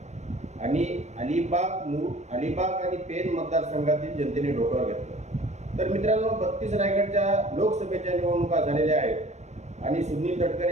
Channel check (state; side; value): late; left; 0.33 ms